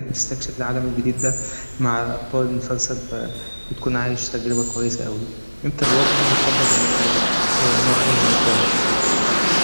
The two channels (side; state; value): both; inverted; correlation -1.00